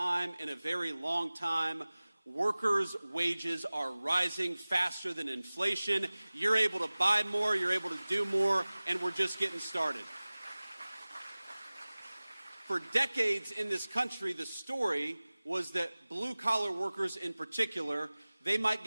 in a very long time, workers' wages are rising faster than inflation. You're able to buy more, you're able to do more, and we're just getting started. For decades in this country, the story was that blue-collar workers in particular, they might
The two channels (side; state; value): both; inverted; correlation -0.99